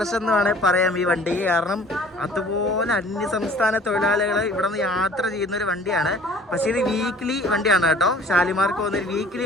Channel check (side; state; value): both; normal; correlation 0.50